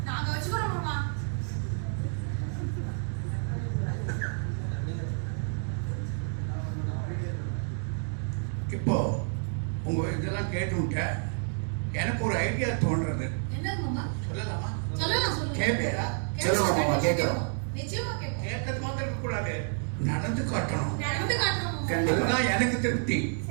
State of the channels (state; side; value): silent; left; 56 dB below the other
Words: அம்மா. இப்போ உங்க இதெல்லாம் கேட்டு எனக்கு ஒரு ஐடியா தோன்றது. சொல்லலாமா? கேட்பேரா? சொல்லுங்க மாமா, கேட்கிறோம். கேட்கறது மாத்திரம் இருக்க கூடாது, நடந்து காட்டணும். கண்டிப்பா எனக்கு திருப்தி.